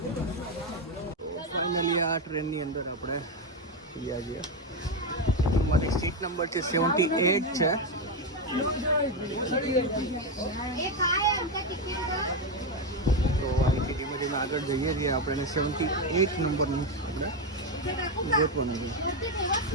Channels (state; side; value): normal; both; correlation 0.09